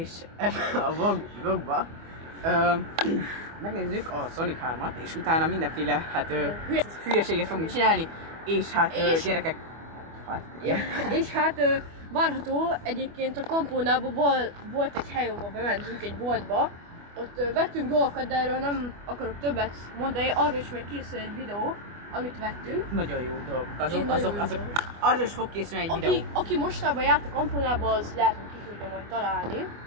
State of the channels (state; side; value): late; left; 25 ms